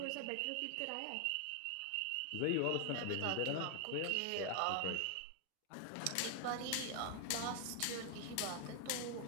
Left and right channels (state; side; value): different; both; correlation 0.00